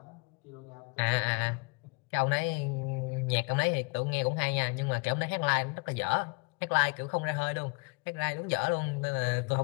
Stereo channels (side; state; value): right; quieter; 31.9 dB